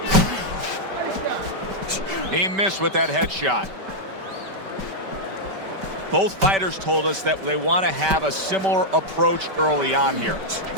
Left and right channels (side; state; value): left; late; 5.2 ms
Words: He missed with that headshot. Both fighters told us that they want to have a similar approach early on here.